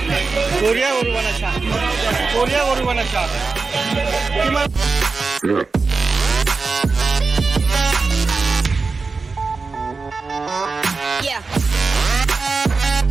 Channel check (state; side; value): quieter; left; 4.3 dB